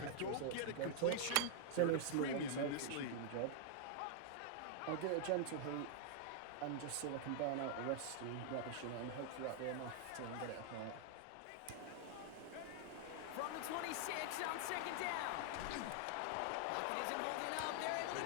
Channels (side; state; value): both; different; correlation 0.00